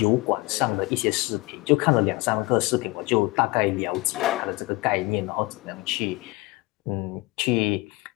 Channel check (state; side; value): quieter; right; 22.5 dB